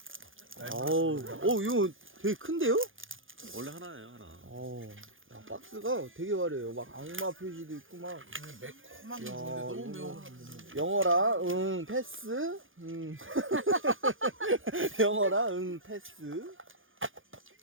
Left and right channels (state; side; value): late; left; 0.58 ms